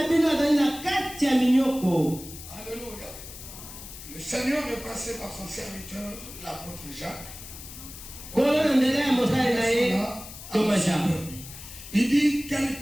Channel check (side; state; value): left; noise; hiss, 14 dB below the sound